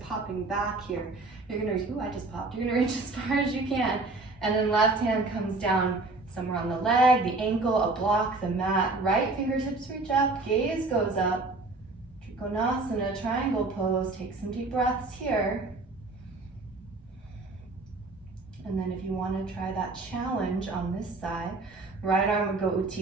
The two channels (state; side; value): quieter; left; 3.3 dB